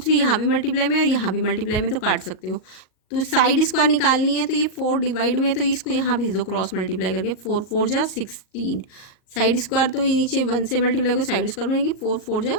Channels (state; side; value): late; right; 38 ms